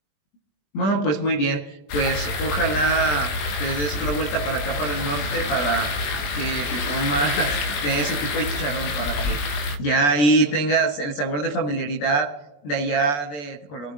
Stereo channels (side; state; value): right; late; 21 ms